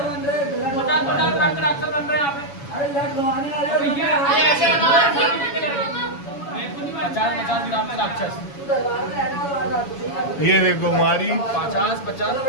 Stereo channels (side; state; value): right; late; 7.1 ms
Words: ये देखो हमारी 50